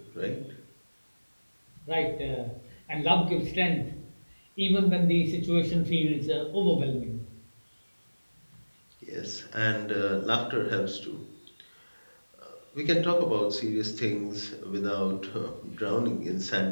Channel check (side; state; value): both; inverted; correlation -1.00